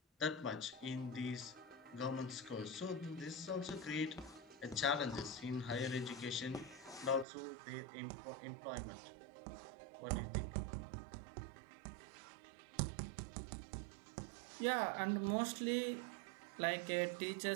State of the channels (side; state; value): left; drops out; at 7.2 s